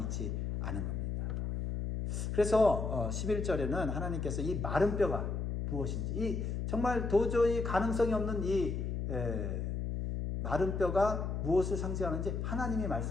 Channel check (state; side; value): noise; left; hum, 2 dB below the sound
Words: 않은 겁니다. 그래서 11절에는 하나님께서 이 마른 뼈가 무엇인지, 이 정말 도저히 가능성이 없는 이 마른 뼈가 무엇을 상징하는지 하나님이